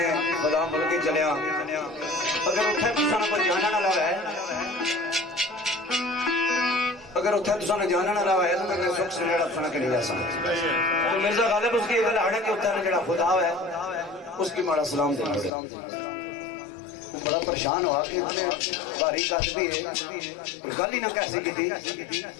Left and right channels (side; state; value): right; drops out; at 15.5 s